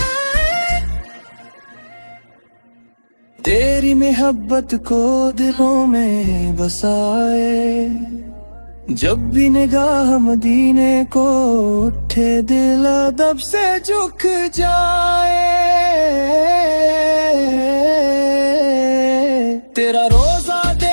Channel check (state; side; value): inverted; both; correlation -1.00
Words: تیری محبت کو دلوں میں بسائے، جب بھی نگاہ مدینے کو اٹھے دل ادب سے جھک جائے، تیرا روزہ